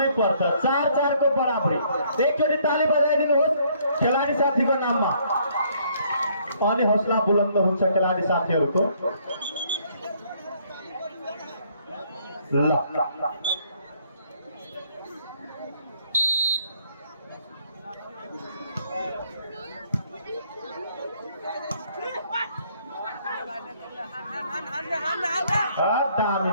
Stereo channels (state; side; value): inverted; both; correlation -0.65